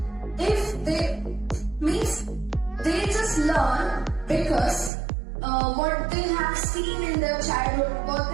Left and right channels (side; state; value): left; drops out; at 4.9 s